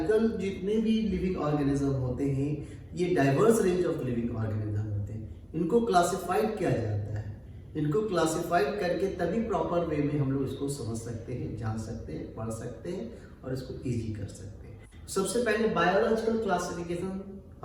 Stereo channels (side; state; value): both; identical; correlation 1.00